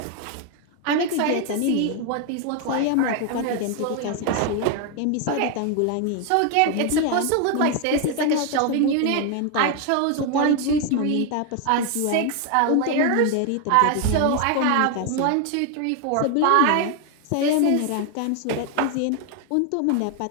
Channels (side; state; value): both; different; correlation 0.01